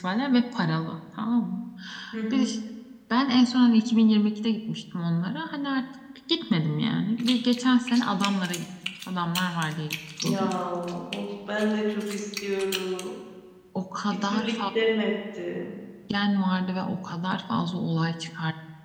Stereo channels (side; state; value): both; identical; correlation 1.00